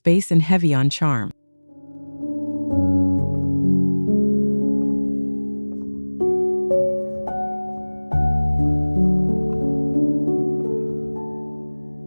and heavy on charm.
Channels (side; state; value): both; inverted; correlation -1.00